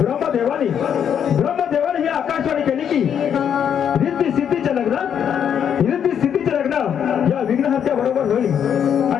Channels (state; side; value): quieter; right; 8.5 dB